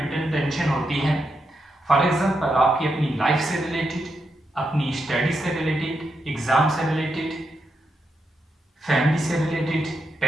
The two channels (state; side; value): normal; both; correlation 0.84